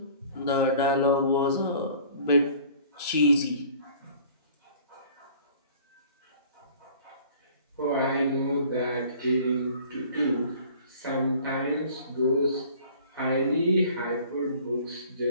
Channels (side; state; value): both; inverted; correlation -0.50